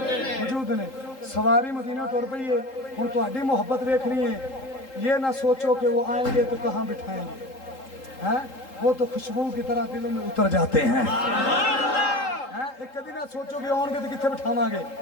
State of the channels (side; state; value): right; late; 3.8 ms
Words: ने। सवारी मदीना तुर पई है, हुण तुहाडी मुहब्बत देखनी है, ये ना सोचो कि वो आएंगे तो कहाँ बिठाएंगे, हैं वो तो खुशबू की तरह दिलों में उतर जाते हैं, एक कभी ना सोचो कि आउणगे तो कित्थे बिठावांगे,